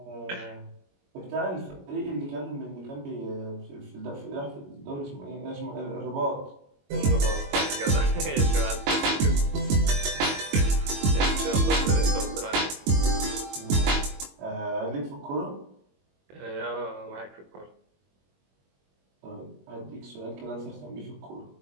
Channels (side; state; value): left; late; 21 ms